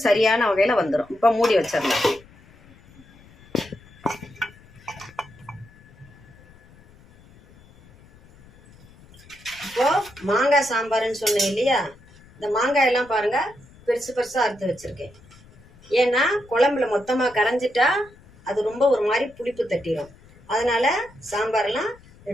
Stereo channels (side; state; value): left; noise; rumble, 25 dB below the sound